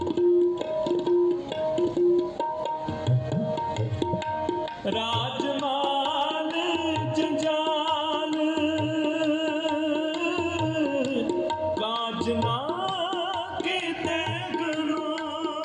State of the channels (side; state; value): both; identical; correlation 1.00